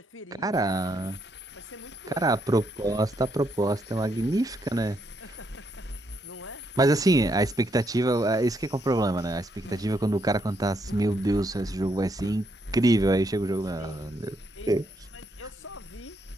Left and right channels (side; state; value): both; normal; correlation 0.76